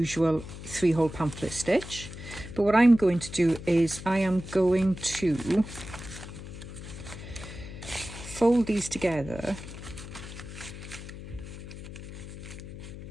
3-hole pamphlet stitch. But what I'm going to do is I am going to fold these together,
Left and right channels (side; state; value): left; noise; hum, 12 dB below the sound